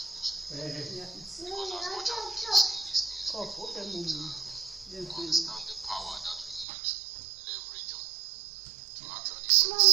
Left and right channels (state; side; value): drops out; left; at 6.7 s